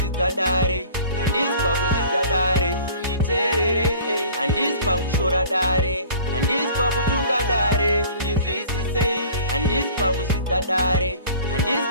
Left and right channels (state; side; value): inverted; both; correlation -0.47